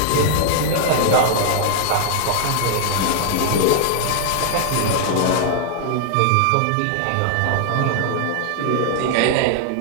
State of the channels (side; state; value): both; different; correlation 0.00